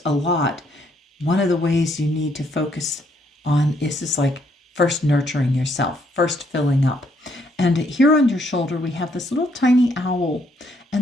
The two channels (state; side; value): normal; both; correlation 0.71